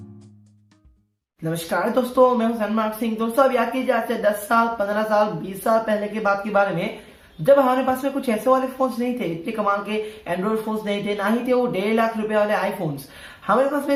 नमस्कार दोस्तों, मैं हूं सनमार्क सिंह। दोस्तों, अब याद कीजिए आज से 10 साल, 15 साल, 20 साल पहले की बात के बारे में, जब हमारे पास में कुछ ऐसे वाले फोन्स नहीं थे, इतने कमाल के एंड्रॉइड फोन्स नहीं थे, ना ही थे वो 1.5 लाख रुपए वाले आईफोन्स। हमारे पास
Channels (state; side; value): identical; both; correlation 1.00